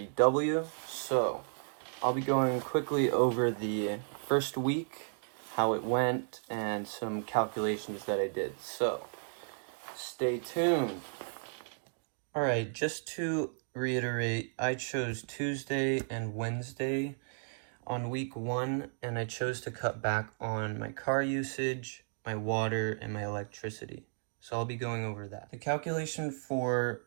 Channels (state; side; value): silent; left; digital silence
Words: So, I'll be going quickly over the first week, how it went, and some calculations that I did. So, stay tuned. Alright, just to reiterate, I chose Tuesday and Wednesday on week 1, and I chose to cut back on my car usage, my water, and my electricity. So I'll be going over that. The calculation for